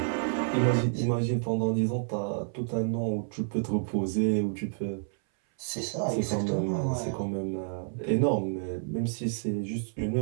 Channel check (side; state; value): left; silent; 58 dB below the other